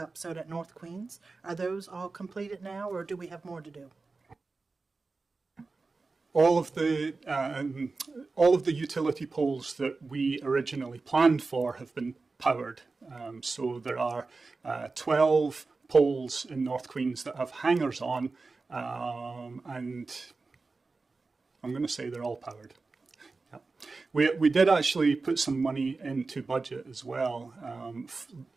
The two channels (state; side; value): quieter; left; 3.9 dB